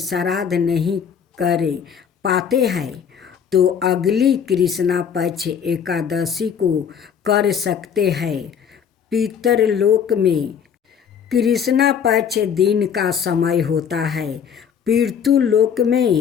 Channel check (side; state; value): right; quieter; 7.7 dB